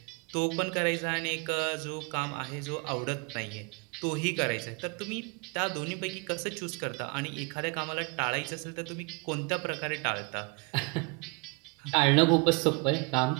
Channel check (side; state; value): left; quieter; 30.2 dB